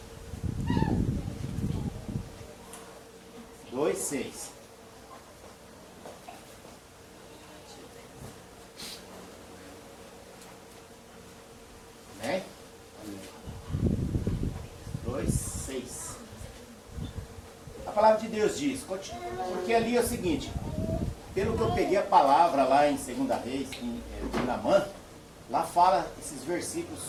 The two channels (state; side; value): identical; both; correlation 1.00